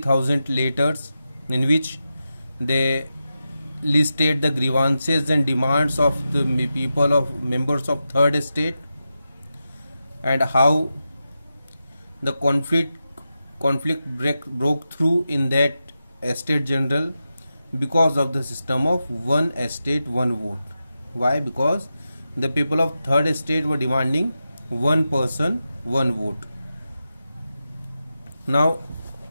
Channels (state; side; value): inverted; both; correlation -0.90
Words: letters in which they listed the grievances and demands of the people of members of Third Estate, and how the conflict broke through in that Estate General because of the system of one estate one vote. Why? Because the people of Third Estate were demanding one person one vote. Now,